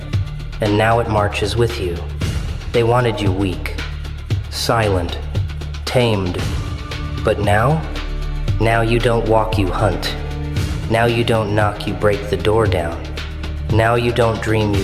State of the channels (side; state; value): both; identical; correlation 1.00